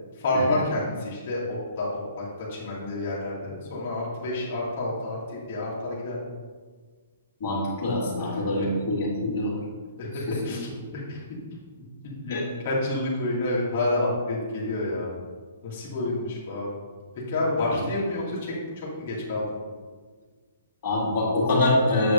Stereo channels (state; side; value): inverted; both; correlation -0.57